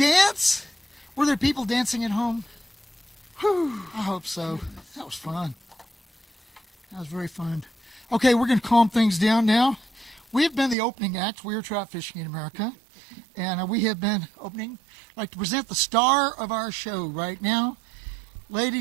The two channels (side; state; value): left; drops out; at 10.8 s